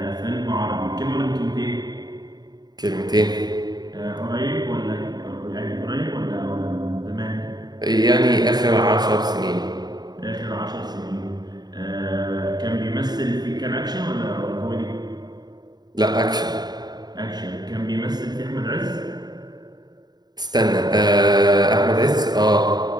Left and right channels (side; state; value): left; late; 0.20 ms